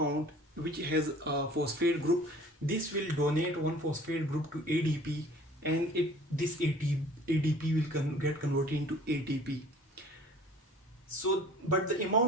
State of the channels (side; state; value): both; normal; correlation 0.49